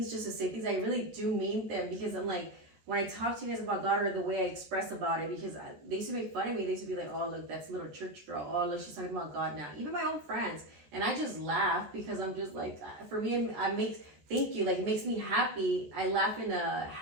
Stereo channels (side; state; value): left; late; 14 ms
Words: just to say things. I really do mean them, because I'm like, when I talk to you guys about God, or the way I express about it, because they used to make fun of me. They used to be like, oh, look, that's a little church girl. Oh, look, she's talking about God now. Even my own friends. And I just laugh because I'm just like, for me, thank you. Like, it makes me happy. I laugh in a